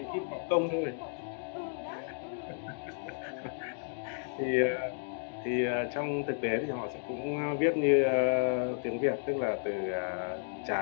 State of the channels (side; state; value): right; silent; digital silence